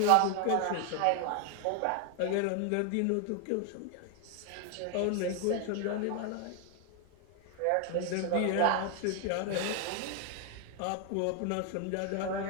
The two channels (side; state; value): both; different; correlation 0.00